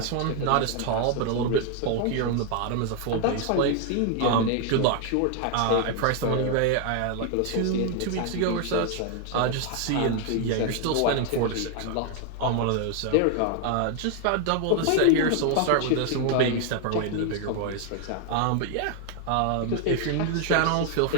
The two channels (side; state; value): both; different; correlation 0.00